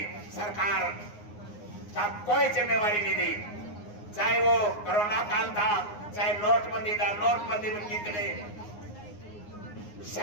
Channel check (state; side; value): late; right; 9.7 ms